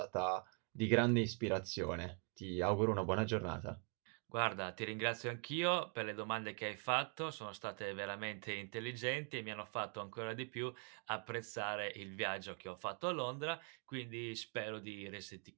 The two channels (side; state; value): left; quieter; 38.9 dB